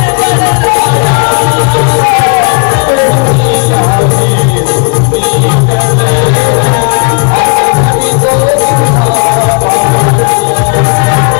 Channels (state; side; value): quieter; right; 35.9 dB